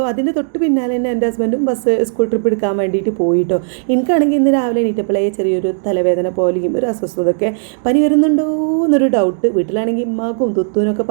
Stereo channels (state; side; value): silent; left; digital silence